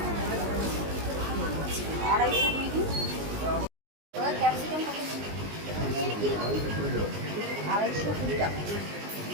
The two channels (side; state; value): left; late; 19 ms